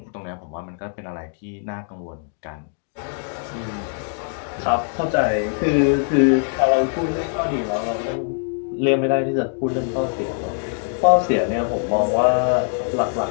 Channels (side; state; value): right; silent; 56 dB below the other